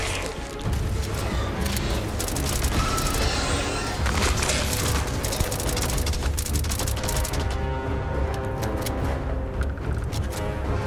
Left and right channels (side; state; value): both; identical; correlation 1.00